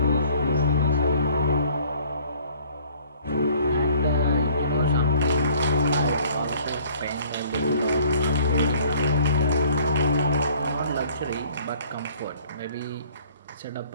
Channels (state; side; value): inverted; both; correlation -0.56